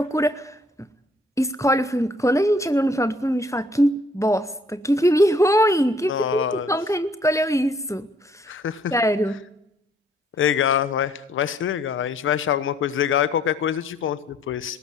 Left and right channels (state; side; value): normal; both; correlation 0.63